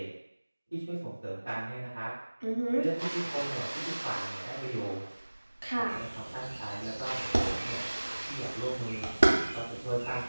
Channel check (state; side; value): inverted; both; correlation -1.00